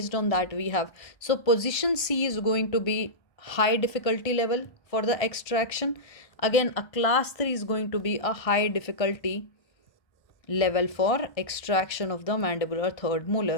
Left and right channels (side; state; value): right; late; 1.5 ms